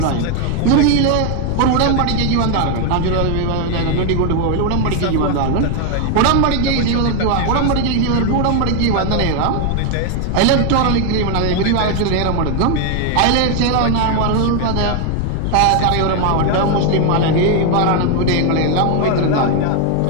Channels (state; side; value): different; both; correlation 0.01